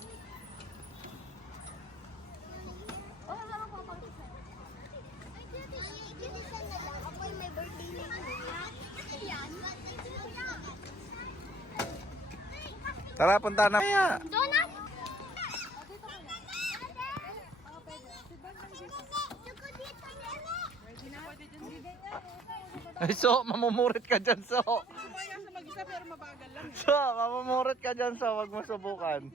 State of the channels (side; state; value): both; normal; correlation 0.58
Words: Oh, wala ko pa. Ako ay may birthday na yan. Tara, punta na. Kaya. Donut! Ay, so, mamumurit ka dyan, so. Sumaya sa mag-isa pero mabagal lang. So, mamumurit ka dyan, so. Wag mo subukan.